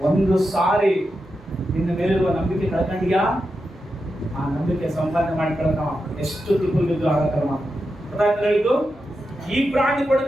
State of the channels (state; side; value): normal; both; correlation 0.88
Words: ಒಂದು ಸಾರಿ ನಿನ್ನ ಮೇಲಿರುವ ನಂಬಿಕೆ ಕಳ್ಕೊಂಡಿಯಾ, ಆ ನಂಬಿಕೆ ಸಂಪಾದನೆ ಮಾಡ್ಕೊಳಕ ಎಷ್ಟು ತಿಪ್ಪಲು ಬಿದ್ದು ಆಗತ್ತಲ್ಲ. ಹೇಳಿದ್ದು, ಈ ಬ್ರಾಂಡ್